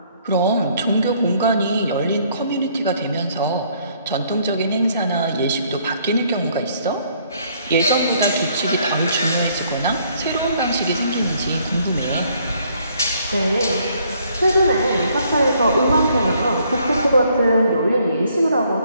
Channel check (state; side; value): inverted; both; correlation -0.66